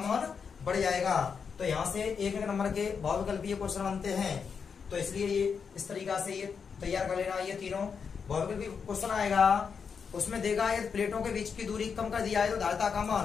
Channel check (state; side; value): quieter; right; 6.1 dB